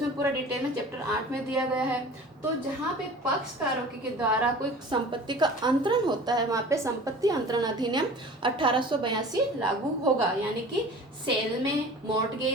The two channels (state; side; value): normal; both; correlation 0.41